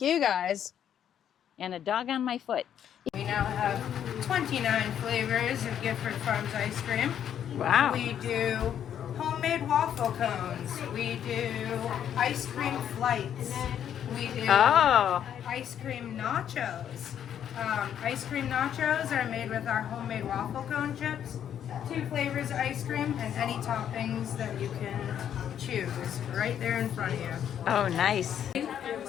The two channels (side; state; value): right; quieter; 9.5 dB